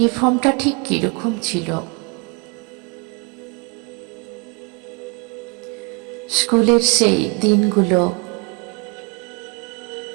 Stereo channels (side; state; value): left; quieter; 32.0 dB